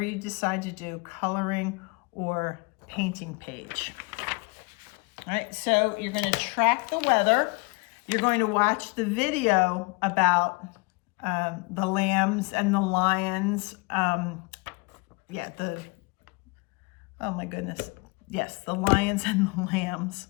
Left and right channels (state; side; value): quieter; right; 27.9 dB